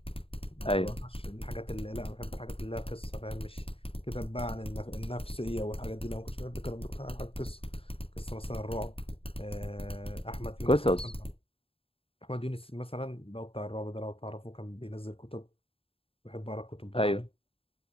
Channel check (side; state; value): right; late; 0.27 ms